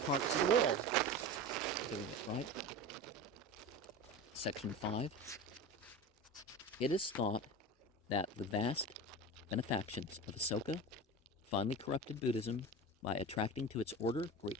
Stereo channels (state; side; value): normal; both; correlation 0.29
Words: of the world doing it, right? Section 5. It is thought that the vast benefactions of Asoka finally corrupted Buddhism by attracting to its order great